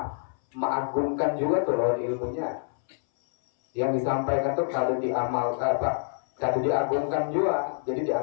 mengagungkan juga tuh lawan ilmunya. Yang disampaikan tuh kada diamalkan kada diagungkan juga, jadi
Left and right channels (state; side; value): silent; right; 60 dB below the other